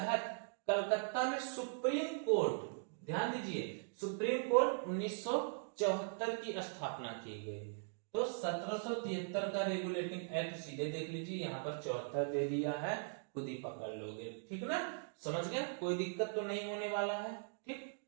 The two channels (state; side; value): silent; left; digital silence